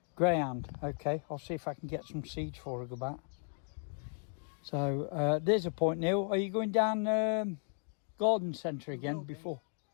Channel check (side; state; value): right; silent; 54 dB below the other